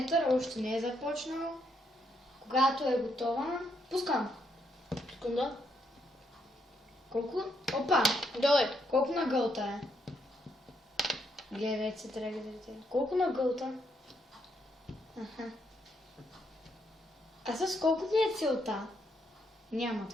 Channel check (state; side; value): normal; both; correlation 0.76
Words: още не е започнал. Когато е готова, пускам. Секунда. Колко? Опа! Доле. Колко на гълта е? Гледайте се, трябва да видите. Колко на гълта? Аха. А с колко ви е целта? Няма